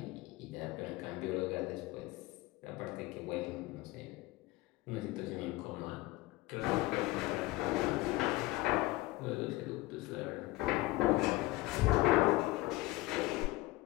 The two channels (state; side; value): quieter; right; 19.8 dB